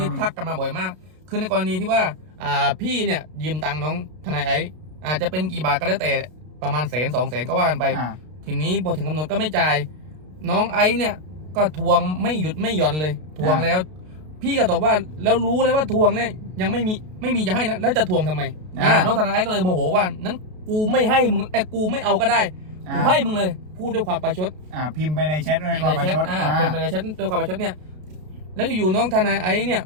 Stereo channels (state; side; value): late; left; 33 ms